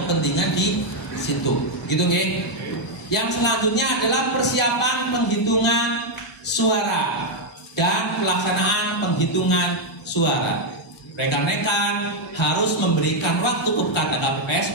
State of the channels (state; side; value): normal; both; correlation 0.00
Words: di situ. Gitu nggih? Yang selanjutnya adalah persiapan penghitungan suara. dan pelaksanaan penghitungan suara. Rekan-rekan harus memberikan waktu kepada